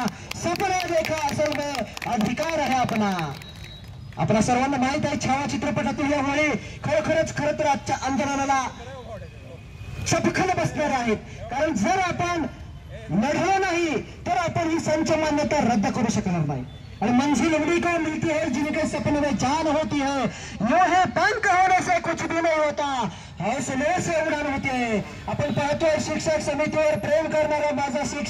सपना देखा असल में अधिकार है अपना। आपल्या सर्वांना माहित आहे छावा चित्रपटातील या वेळी खरोखरच खरं तर आजच्या आंदोलनाला चपखल बसणार आहेत कारण जर आपण लढलो नाही तर आपण ही संच मान्यता रद्द करू शकणार नाही और मंजिल उड़ी को मिलती है जिनके सपने में जान होती है यो है पंख होने से कुछ भी नहीं होता हौसले से उड़ान होती है। आपण पाहतोय शिक्षक समितीवर प्रेम करणारा माझा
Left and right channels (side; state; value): both; identical; correlation 1.00